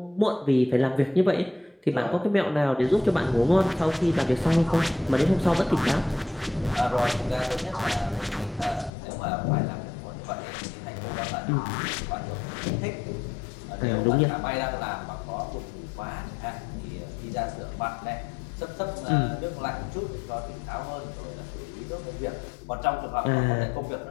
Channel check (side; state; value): right; drops out; at 8.9 s